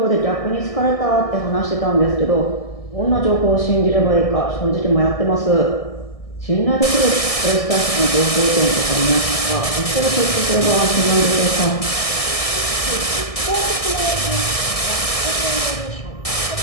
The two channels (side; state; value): right; late; 1.6 ms